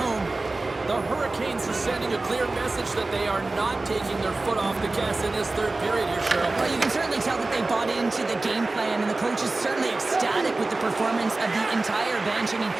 The Hurricanes are sending a clear message that they are not taking their foot off the gas in this third period here, Cheryl. Well, you can certainly tell that they bought into the game plan, and the coach is certainly ecstatic with the performance of the entire bench. I mean,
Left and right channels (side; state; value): left; quieter; 3.2 dB